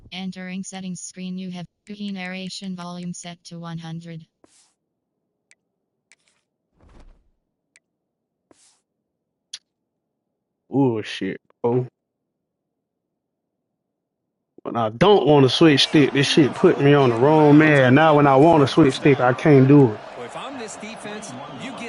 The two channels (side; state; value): both; identical; correlation 1.00